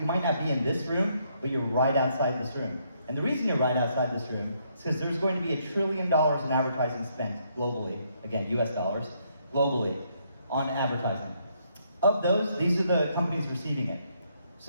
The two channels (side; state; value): both; inverted; correlation -0.73